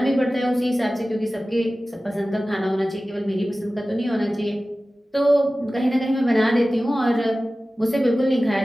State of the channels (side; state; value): both; normal; correlation 0.96